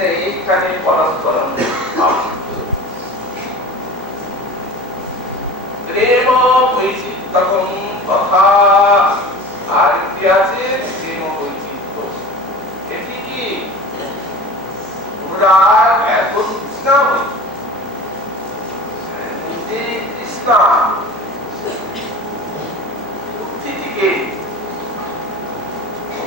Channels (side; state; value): both; normal; correlation 0.36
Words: এইখানে পরস্পর প্রেম বৈচিত্র্যম তথা আর কি আছে? প্রেম বৈচিত্র্য। এটি কি অনুরাগ এত তৃষ্ণা তৃষ্ণা বুদ্ধিটিকে